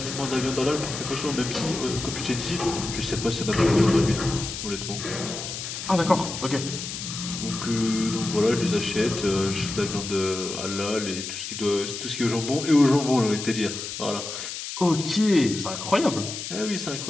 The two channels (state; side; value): noise; left; hiss, 7 dB below the sound